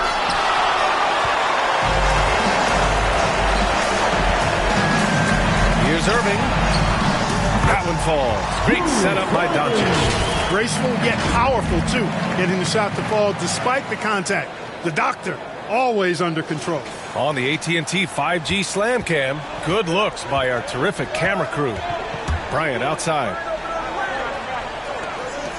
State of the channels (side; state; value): both; identical; correlation 1.00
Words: Here's Irving. That one falls. Great setup by Doncic. Graceful yet powerful, too. Getting the shot to fall despite the contact. The doctor, always under control. On the AT&T 5G Slam Cam, good looks by our terrific camera crew. Bryant outside.